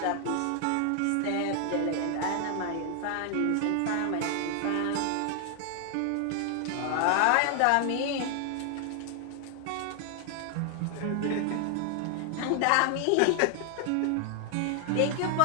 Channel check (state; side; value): different; both; correlation 0.00